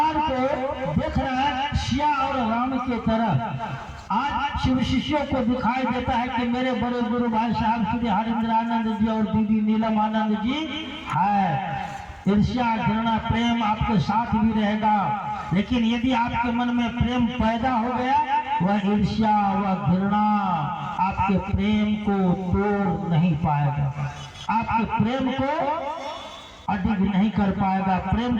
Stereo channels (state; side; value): identical; both; correlation 1.00